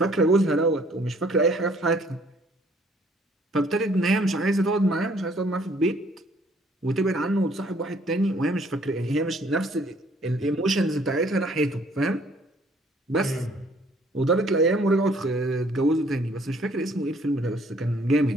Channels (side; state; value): both; normal; correlation 0.61